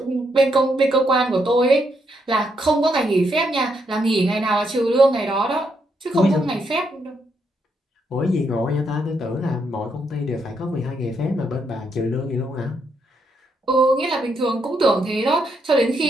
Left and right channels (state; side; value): normal; both; correlation 0.77